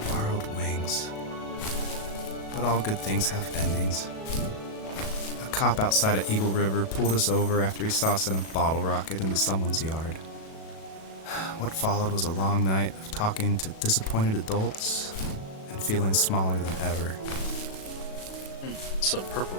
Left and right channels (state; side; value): late; right; 37 ms